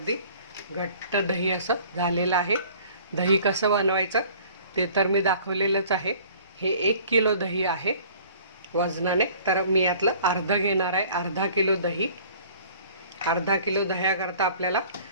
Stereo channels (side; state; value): both; inverted; correlation -0.51